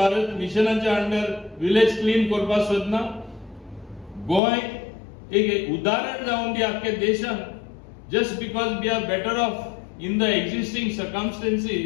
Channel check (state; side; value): drops out; right; at 4.4 s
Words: मिशनाच्या अंडर विलेज क्लीन करपाक सोदना. गोंय एक उदाहरण जावन दी आख्ख्या देशान. Just because we are better off in the existing